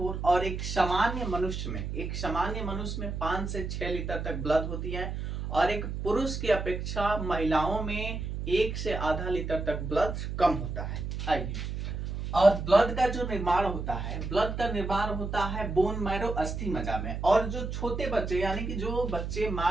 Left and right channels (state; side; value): noise; right; hum, 4 dB below the sound